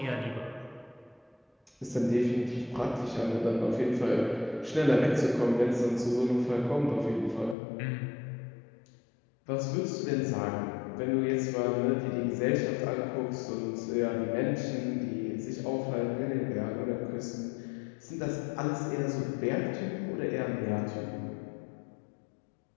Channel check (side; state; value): right; drops out; at 7.6 s